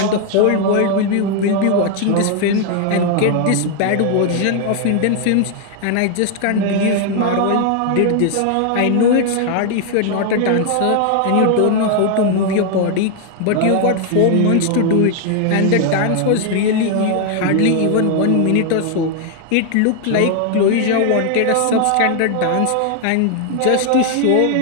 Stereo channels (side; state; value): both; different; correlation 0.00